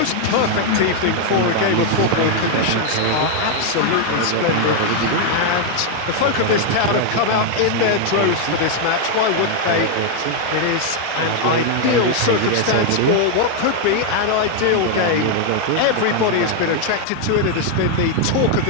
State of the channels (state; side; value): different; both; correlation 0.01